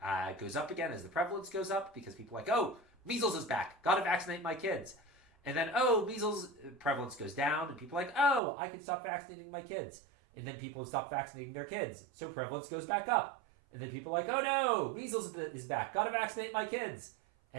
goes up again as the prevalence goes up, because people are like, oh, measles is back. Got to vaccinate my kids. And then, oh, measles prevalence goes down, and people are like, oh, I can stop vaccinating my kids. And then people stop vaccinating their kids, so prevalence goes back up. And then people are like, oh no, measles is back. Got to vaccinate my kids.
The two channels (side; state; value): left; drops out; at 8.4 s